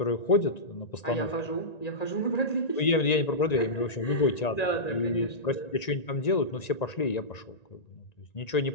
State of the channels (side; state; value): right; late; 1.9 ms